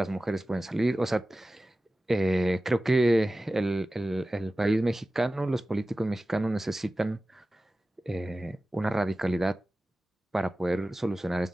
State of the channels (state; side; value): normal; both; correlation 0.96